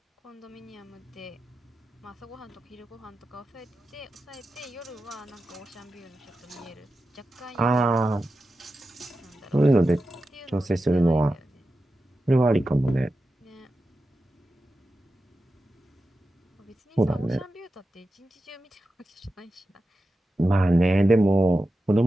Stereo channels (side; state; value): both; normal; correlation 0.92